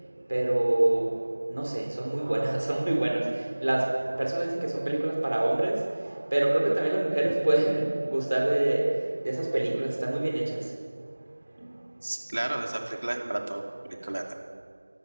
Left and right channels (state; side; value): inverted; both; correlation -1.00